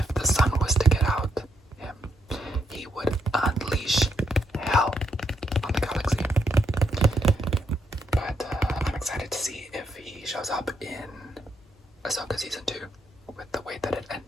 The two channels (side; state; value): both; normal; correlation 0.78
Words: the Sun was to get out him, he would unleash hell on the galaxy. But I'm excited to see if he shows up in Ahsoka Season 2 with the way that it